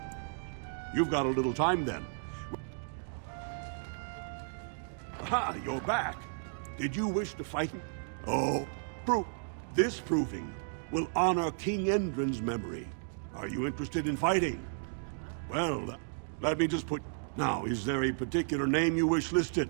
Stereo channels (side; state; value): left; silent; digital silence